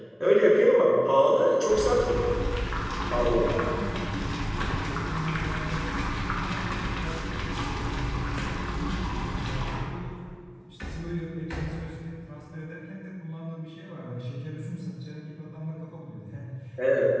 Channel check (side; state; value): both; identical; correlation 1.00